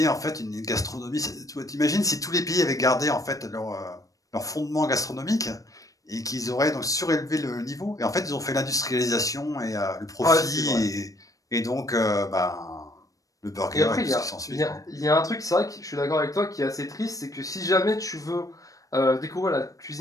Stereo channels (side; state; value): right; late; 0.16 ms